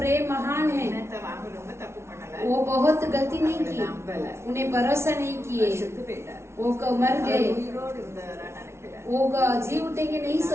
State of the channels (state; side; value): late; left; 0.13 ms